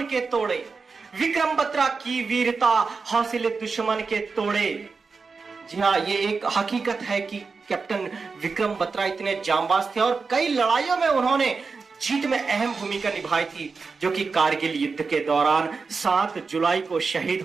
के तोड़े, विक्रम बत्रा की वीरता हौसले दुश्मन के तोड़े। जी हाँ, ये एक हकीकत है कि कैप्टन विक्रम बत्रा इतने जांबाज थे और कई लड़ाइयों में उन्होंने जीत में अहम भूमिका निभाई थी, जो कि कारगिल युद्ध के दौरान 7 जुलाई को शहीद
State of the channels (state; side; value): quieter; left; 4.7 dB